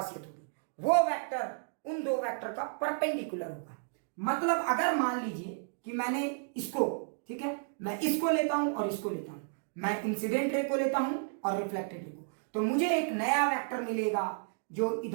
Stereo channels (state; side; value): silent; left; digital silence